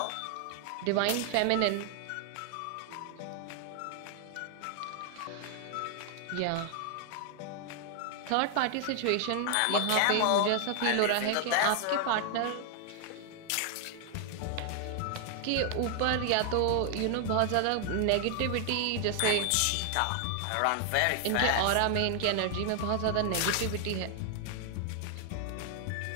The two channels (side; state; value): both; different; correlation 0.00